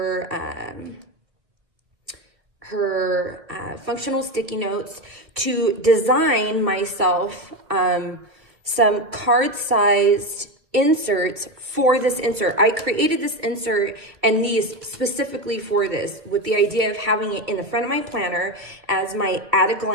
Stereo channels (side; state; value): left; late; 1.6 ms